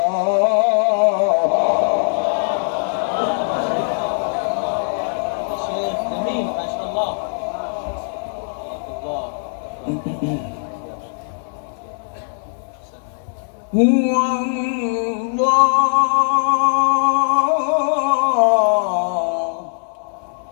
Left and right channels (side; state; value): right; silent; 65 dB below the other